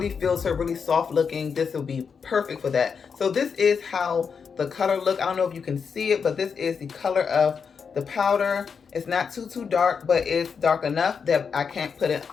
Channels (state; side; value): quieter; right; 6.1 dB